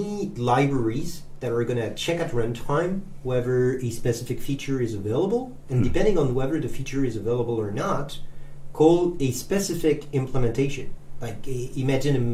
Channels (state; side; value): identical; both; correlation 1.00